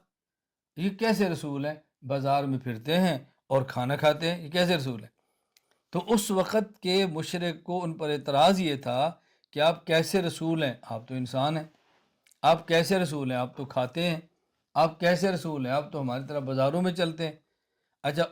یہ کیسے رسول ہیں؟ بازار میں پھرتے ہیں اور کھانا کھاتے ہیں، یہ کیسے رسول ہیں؟ تو اس وقت کے مشرک کو ان پر اعتراض یہ تھا کہ آپ کیسے رسول ہیں؟ آپ تو انسان ہیں۔ آپ کیسے رسول ہیں؟ آپ تو کھاتے ہیں۔ آپ کیسے رسول ہیں؟ آپ تو ہماری طرح بازاروں میں چلتے ہیں۔ اچھا،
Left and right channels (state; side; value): identical; both; correlation 1.00